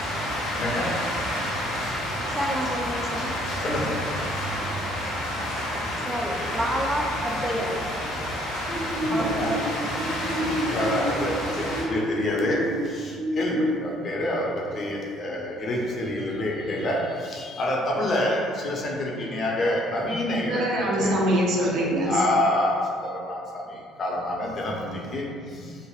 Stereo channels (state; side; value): normal; both; correlation 0.63